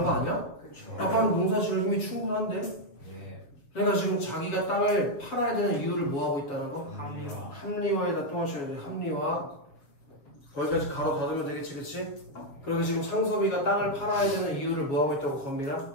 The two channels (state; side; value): late; right; 7.1 ms